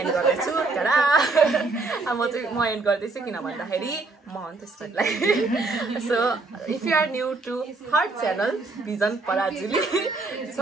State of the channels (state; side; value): quieter; left; 3.6 dB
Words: गर्दैछु टाडा म एन्ड गर्दैछु किन भन्दाखेरि म हो त्यसलाई so if you are new to her channel Vision Parajuli